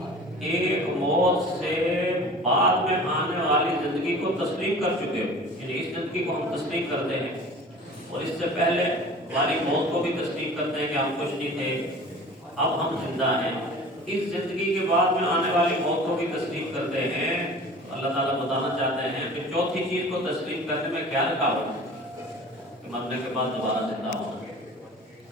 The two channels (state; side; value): normal; both; correlation 0.42